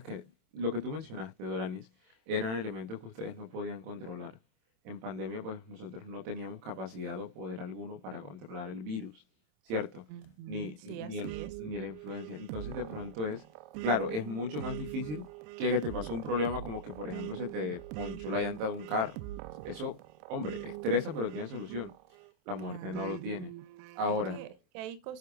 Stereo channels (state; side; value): late; left; 27 ms